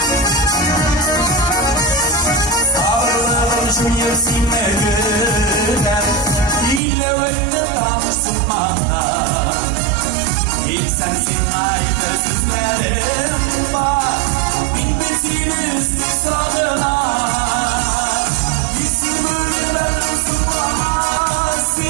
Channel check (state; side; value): drops out; left; at 6.8 s